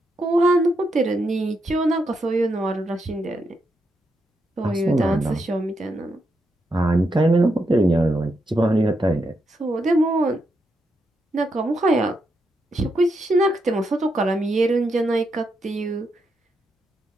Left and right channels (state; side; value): normal; both; correlation 0.82